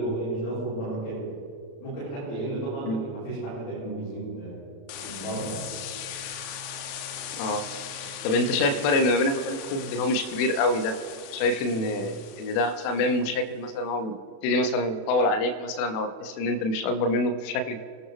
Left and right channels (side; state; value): right; late; 36 ms